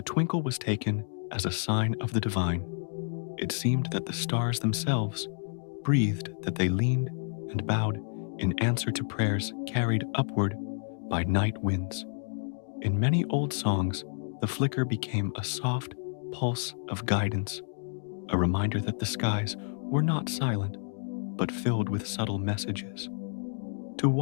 twinkle was taken as a sign of the divine. It seemed that the stars themselves breathed, that they leaned and bowed in answer to prayers carried upward by night winds. In many old songs, the flicker became a soft pulse of guidance, a reminder that the skies were not silent, but filled with subtle messages. To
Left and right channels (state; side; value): silent; right; digital silence